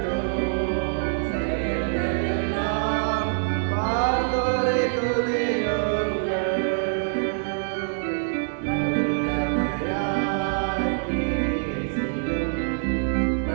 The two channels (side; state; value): left; silent; digital silence